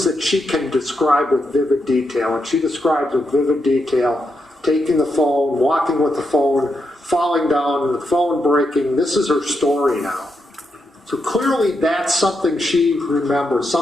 that she can describe with vivid detail. And she describes with vivid detail taking the phone, walking with the phone, falling down, the phone breaking. This is her story now. So clearly that's something she remembers,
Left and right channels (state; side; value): normal; both; correlation 0.84